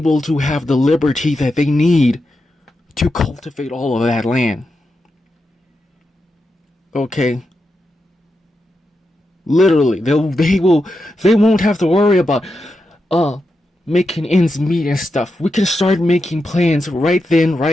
to have the liberty that they need to cultivate all of that land. Okay? Literally, they won't have to worry about making ends meet and stuff. We can start making plans right then,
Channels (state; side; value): normal; both; correlation 0.87